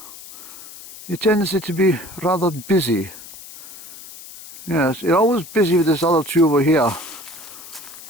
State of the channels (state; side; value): noise; left; hiss, 16 dB below the sound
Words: tendency to be rather busy. Yes, you're always busy with this other two over here.